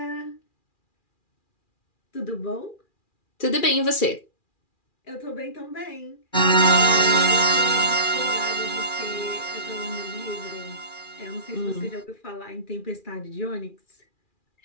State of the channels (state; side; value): late; right; 2.4 ms